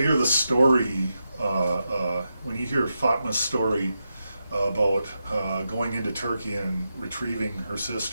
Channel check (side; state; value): both; inverted; correlation -0.87